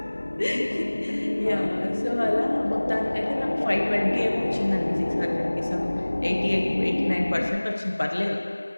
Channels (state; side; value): inverted; both; correlation -1.00